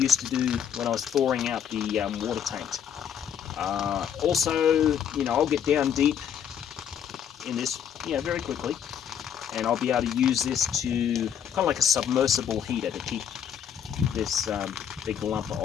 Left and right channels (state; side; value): quieter; right; 8.7 dB